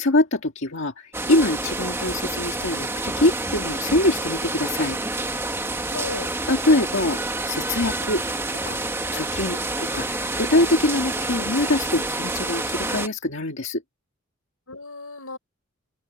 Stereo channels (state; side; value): normal; both; correlation 0.24